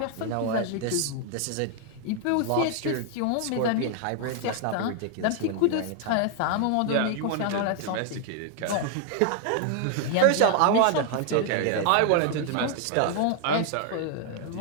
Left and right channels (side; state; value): both; different; correlation 0.00